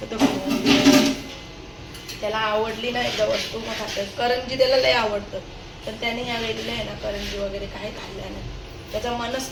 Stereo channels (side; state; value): both; identical; correlation 1.00